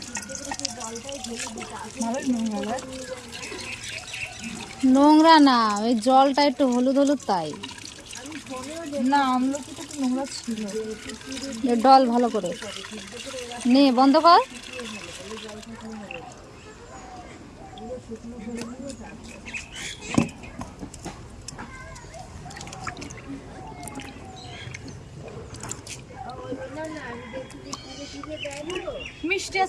নোংরা না, ওই জলটা একটু হলুদ হলুদ তাই। না আমলকিটা একটু নোংরা ছিল। ডল ভালো করে নে, বন্ধ কর। মিষ্টি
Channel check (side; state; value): both; identical; correlation 1.00